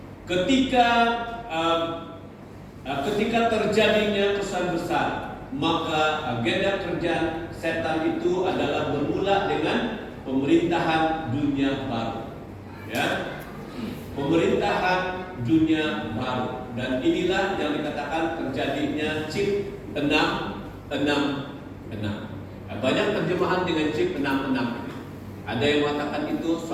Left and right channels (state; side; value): identical; both; correlation 1.00